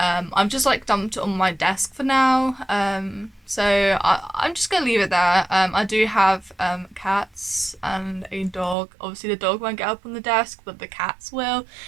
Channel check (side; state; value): left; drops out; at 8.8 s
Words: just like dumped it on my desk for now. So I'm just gonna leave it there. I do have cats and a dog. Obviously the dog won't get up on the desk, but the cats will.